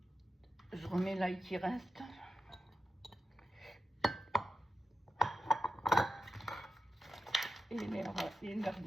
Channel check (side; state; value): both; normal; correlation 0.89